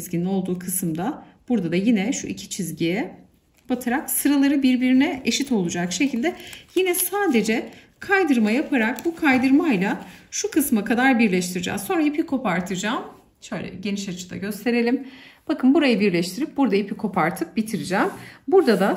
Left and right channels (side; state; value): both; identical; correlation 1.00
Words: olduğu kısımda. Burada da yine şu iki çizgiye batarak sıraları birbirine eşit olacak şekilde yine sadece kaydırma yaparak bu kaydırmayla şu kısma kadar birleştireceğiz. Sonra ipi kopartacağım. Şöyle geniş açıda gösterelim. Bakın burayı birleştirip burada ipi kopartıp bitireceğim. Burada da